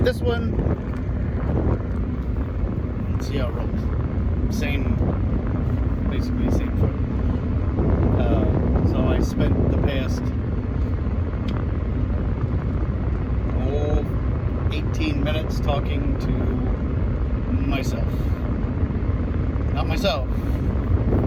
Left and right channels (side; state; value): both; identical; correlation 1.00